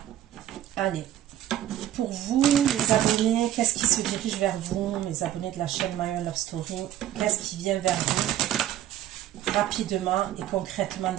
Allez. Pour vous, les abonnés, qu'est-ce qui se dirige vers vous, les abonnés de la chaîne My One Love Story? Qu'est-ce qui vient vers vous rapidement et concrètement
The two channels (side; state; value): left; quieter; 12.6 dB